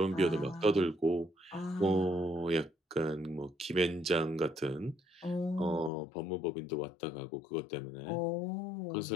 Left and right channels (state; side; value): drops out; right; at 5.9 s